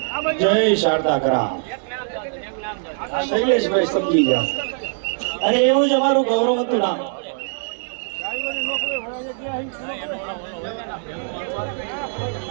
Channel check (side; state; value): left; silent; 58 dB below the other